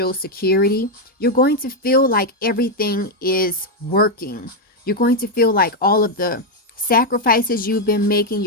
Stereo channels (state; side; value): normal; both; correlation 0.03